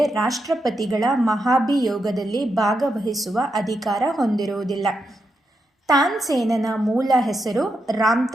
ರಾಷ್ಟ್ರಪತಿಗಳ ಮಹಾಭಿಯೋಗದಲ್ಲಿ ಭಾಗವಹಿಸುವ ಅಧಿಕಾರ ಹೊಂದಿರುವುದಿಲ್ಲ. ತಾನ್ಸೇನನ ಮೂಲ ಹೆಸರು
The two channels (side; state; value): both; normal; correlation 0.84